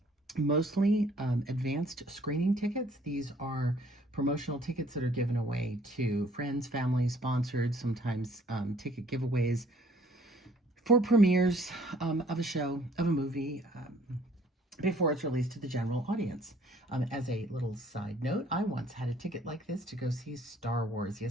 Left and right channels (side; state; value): both; normal; correlation 0.59